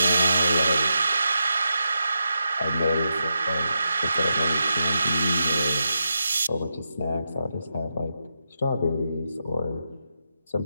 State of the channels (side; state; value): both; inverted; correlation -0.86